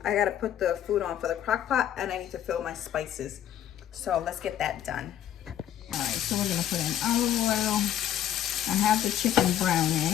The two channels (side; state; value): right; quieter; 10.9 dB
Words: I gotta put the food on for the crock pot, and I need to fill my spices. So let's get that done. All right, so we're gonna put in olive oil. I have the chicken